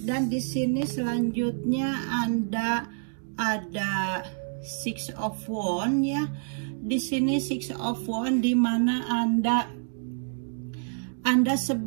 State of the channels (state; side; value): silent; left; digital silence